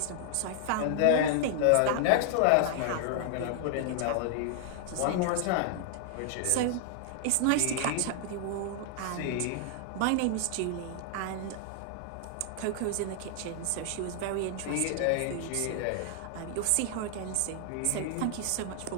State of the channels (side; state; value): both; different; correlation 0.00